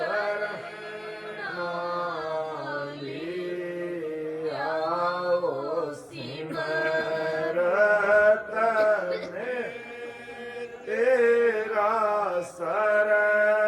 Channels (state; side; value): identical; both; correlation 1.00